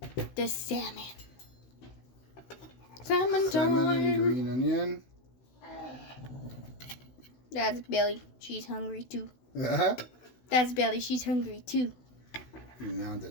The salmon. Salmon Salmon and green onion. That's Billy. She's hungry too. Uh-huh. That's Belly. She's hungry too. No, the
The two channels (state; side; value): late; right; 16 ms